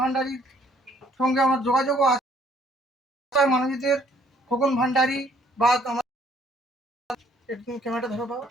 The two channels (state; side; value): normal; both; correlation 0.63